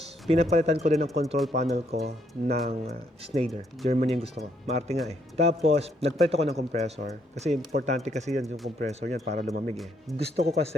pinapalitan ko din ang control panel ko ng Schneider. Germany yung gusto ko. Maarte nga eh. Tapos, nagpalit ako ng compressor. Kasi importante kasi yan yung compressor niyan para lumamig eh. Gusto ko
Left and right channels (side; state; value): both; normal; correlation 0.72